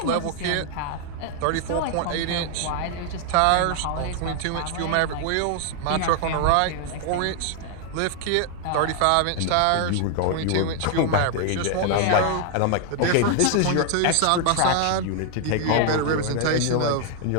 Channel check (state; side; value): different; both; correlation 0.00